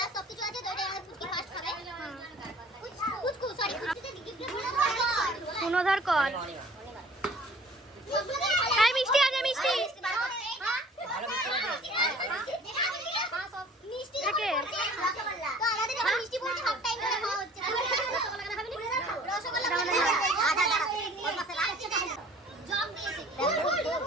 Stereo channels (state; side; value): normal; both; correlation 0.51